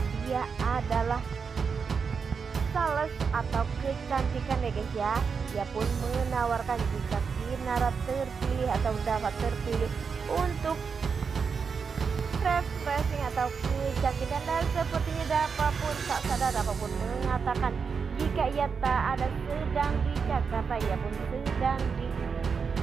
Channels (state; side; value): quieter; left; 5.7 dB